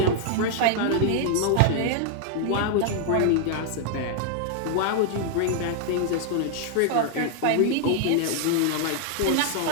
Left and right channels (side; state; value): both; different; correlation 0.00